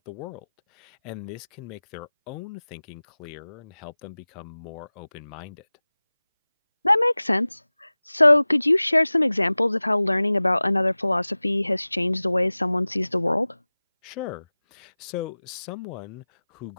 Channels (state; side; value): inverted; both; correlation -0.98